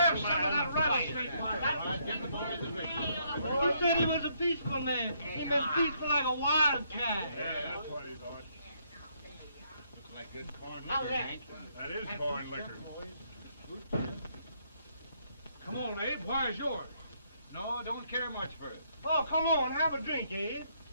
have some of that rattlesnake fire. You said he was a peaceful man. He was peaceful like a wildcat. Yeah, that's what he thought. Looks like good corn liquor, Hank. That is corn liquor. Come on, Abe. Where's yours? No, don't care much for it. Oh, come on. Have a drink, Abe.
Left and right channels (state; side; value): inverted; both; correlation -0.72